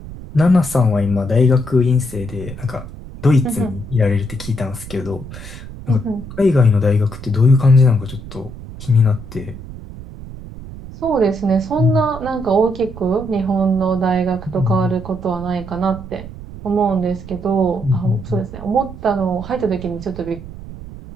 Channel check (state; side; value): noise; right; rumble, 13 dB below the sound